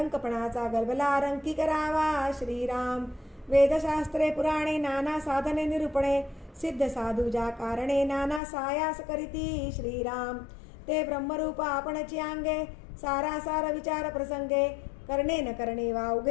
गलबला रंकी करावा श्रीराम. वेदशास्त्रे पुराणे नाना साधने निरूपणे, सिद्ध साधू ज्या कारणे नाना सायास करीती श्रीराम ते ब्रह्मरूप आपणची अंगे सारासार विचार प्रसंगे करणे न करणे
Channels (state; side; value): drops out; right; at 8.4 s